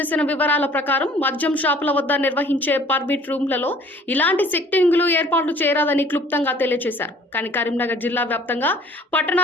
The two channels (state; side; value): normal; both; correlation 0.53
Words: వివరాల ప్రకారం మద్యం షాపుల వద్ద నిర్వహించే పర్మిట్ రూమ్లలో ఇలాంటి సెట్టింగులు ఏర్పాట్లు చేయరాదని క్లుప్తంగా తెలియజేశారు. కానీ కరీంనగర్ జిల్లా వ్యాప్తంగా